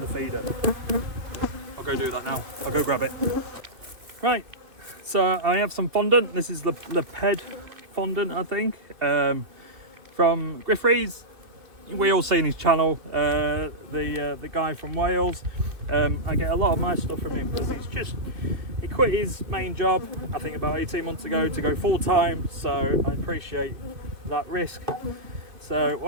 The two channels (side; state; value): left; late; 2.6 ms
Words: the feeder. I'll go do that now. I'll go grab it. Right, so I have some fondant. This is the ped fondant, I think, from Griffrey's. We all seen his channel, the guy from Wales. I get a lot of my stuff from him because he quit his main job, I think about 18 months ago, to go full time. So I appreciate that risk. So